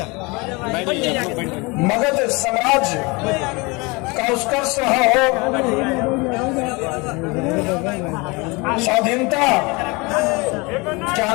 मगध साम्राज्य का उत्कर्ष रहा हो, स्वाधीनता के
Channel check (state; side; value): quieter; right; 26.6 dB